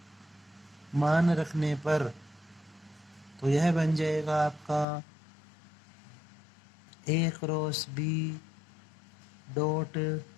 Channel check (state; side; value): drops out; right; at 4.9 s